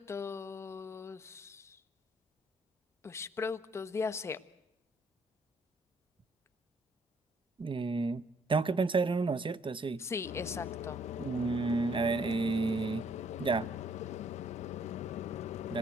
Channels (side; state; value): both; normal; correlation 0.66